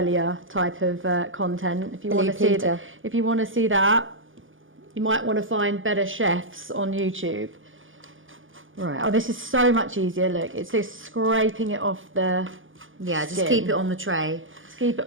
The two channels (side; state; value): left; late; 0.58 ms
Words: type of content. If you want to see that, you might want to find better chefs on YouTube. Right. Oh, this is so much easier. Look, it's just scraping it off the skin. Just keep it on the tray. Keep